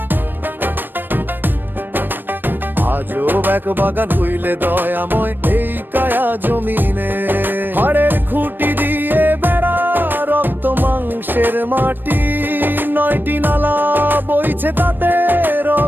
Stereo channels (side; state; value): left; late; 0.094 ms